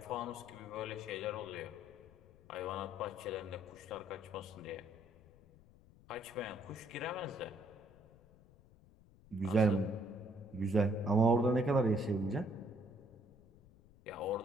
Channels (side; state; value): left; noise; rumble, 25 dB below the sound